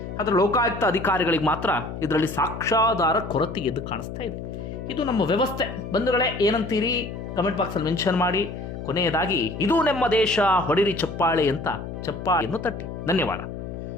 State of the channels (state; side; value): noise; left; hum, 8 dB below the sound